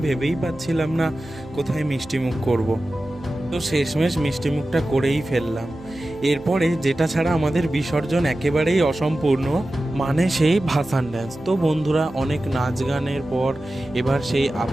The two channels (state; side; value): noise; right; hum, 22 dB below the sound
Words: ভেবেই পাচ্ছিলাম না কোথায় মিষ্টি মুখ করব। তো শেষমেশ মিষ্টি মুখটা করেই ফেললাম। এরপরে যেটা ছাড়া আমাদের বিসর্জন একেবারেই অসম্পূর্ণ, মানে সেই ভাসান ড্যান্স। তো বন্ধুরা, অনেক নাচ গানের পর এবার সেই